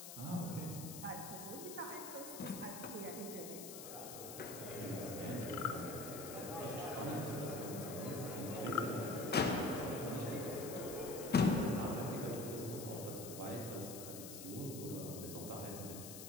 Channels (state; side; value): noise; left; hiss, 9 dB below the sound